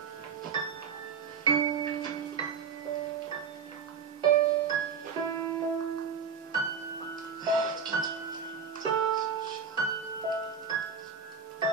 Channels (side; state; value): left; quieter; 6.2 dB